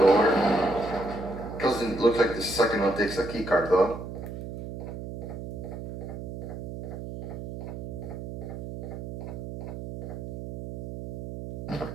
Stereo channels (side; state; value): right; noise; hum, 8 dB below the sound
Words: Doesn't look like the second one takes a keycard though.